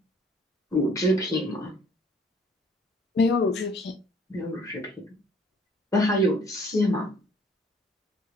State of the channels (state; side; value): normal; both; correlation 0.58